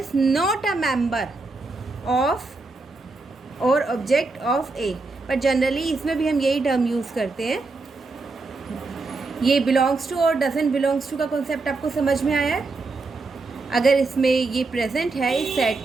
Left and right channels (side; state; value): left; quieter; 3.6 dB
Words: not a member of और ऑब्जेक्ट ऑफ A, पर जनरली इसमें भी हम यही टर्म यूज़ करते हैं। ये बिलोंग्स टू और डजंट बिलोंग्स टू का कॉन्सेप्ट आपको समझ में आया है? अगर इसमें ये प्रेजेंट है इस